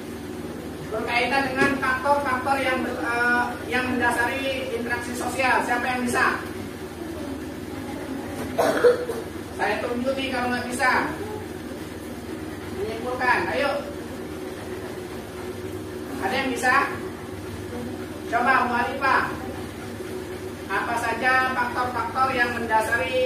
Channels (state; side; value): identical; both; correlation 1.00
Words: Berkaitan dengan faktor-faktor yang mendasari interaksi sosial. Siapa yang bisa? Saya tunjuk nih kalau nggak bisa menyimpulkan. Ayo. Ada yang bisa? Coba Mu'alifah. Apa saja faktor-faktor yang